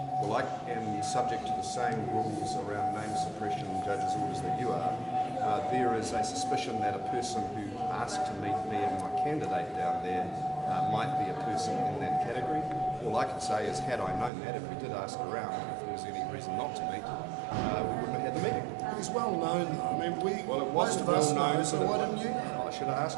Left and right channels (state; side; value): drops out; left; at 14.3 s